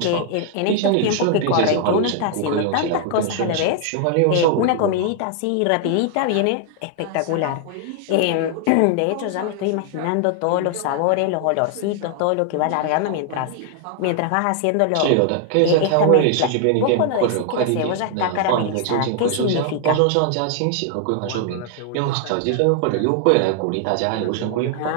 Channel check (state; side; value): different; both; correlation 0.00